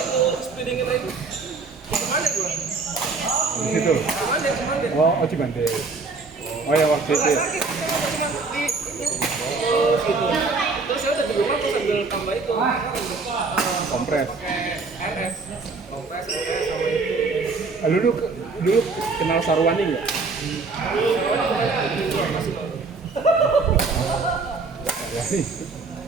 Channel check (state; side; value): quieter; left; 4.1 dB